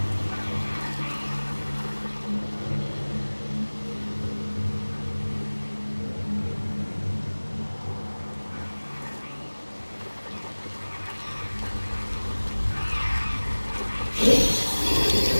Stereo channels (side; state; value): both; inverted; correlation -1.00